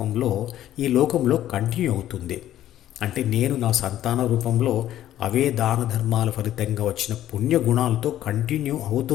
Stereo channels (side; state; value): right; quieter; 12.5 dB